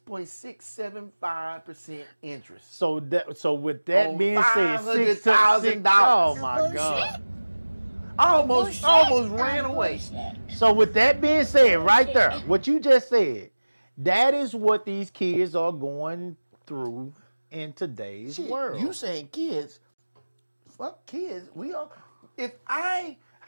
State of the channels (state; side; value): inverted; both; correlation -1.00